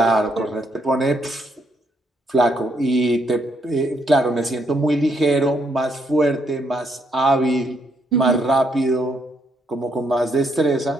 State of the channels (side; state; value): both; normal; correlation 0.74